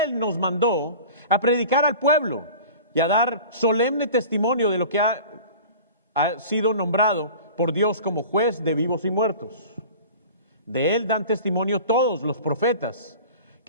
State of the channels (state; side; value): inverted; both; correlation -0.39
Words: nos mandó a predicar al pueblo y a dar solemne testimonio de lo que ha sido nombrado por Dios como juez de vivos y muertos. De Él dan testimonio todos los profetas,